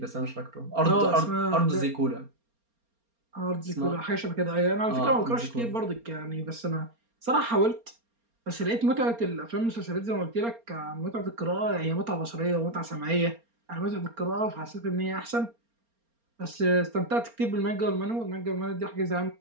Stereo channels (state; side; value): late; left; 4.3 ms